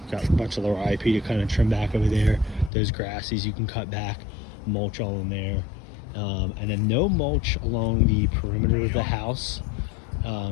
Got a bunch of lower IP to kind of trim back over there. Those grasses you can cut back, mulch all in there. And then no mulch along the perimeter of the house.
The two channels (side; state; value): right; drops out; at 2.7 s